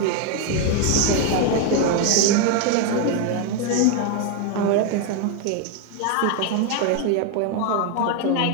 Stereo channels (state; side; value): different; both; correlation 0.01